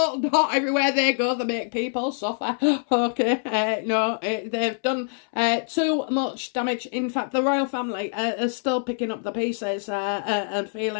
not. Everywhere they go, they make people suffer. Okay, no, they've done too much damage. In fact, the royal family are still picking up the pieces and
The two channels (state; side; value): silent; right; 62 dB below the other